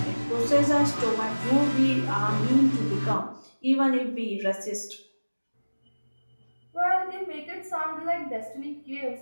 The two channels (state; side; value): inverted; both; correlation -1.00